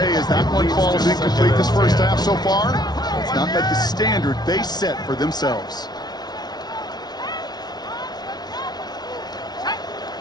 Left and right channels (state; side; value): late; right; 0.19 ms